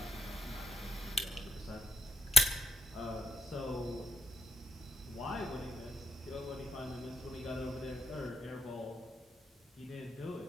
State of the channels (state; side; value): normal; both; correlation 0.74